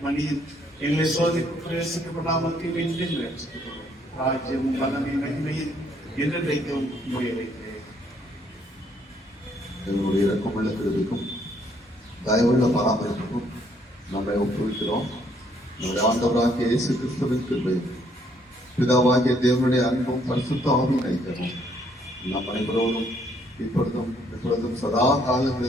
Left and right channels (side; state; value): both; normal; correlation 0.68